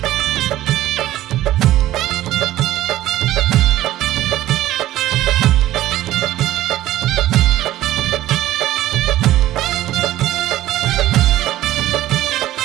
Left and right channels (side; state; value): left; quieter; 14.5 dB